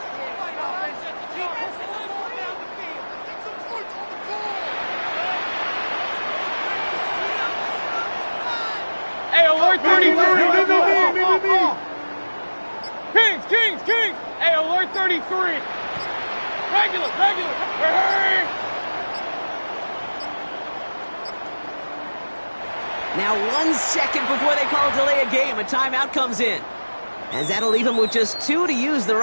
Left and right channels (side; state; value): both; inverted; correlation -1.00